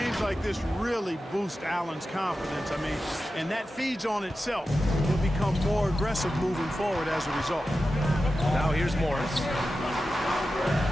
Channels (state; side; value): normal; both; correlation 0.92